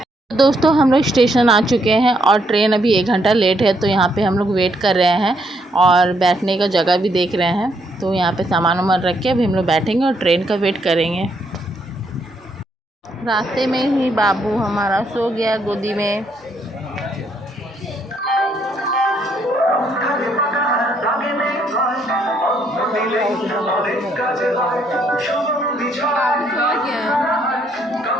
दोस्तों हम लोग स्टेशन आ चुके हैं और ट्रेन अभी 1 घंटा लेट है। तो यहाँ पे हम लोग वेट कर रहे हैं और बैठने का जगह भी देख रहे हैं। तो यहाँ पे सामान वामान रख के अभी हम लोग बैठेंगे और ट्रेन का वेट करेंगे। रास्ते में ही बाबू हमारा सो गया गोदी में।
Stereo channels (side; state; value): both; normal; correlation 0.73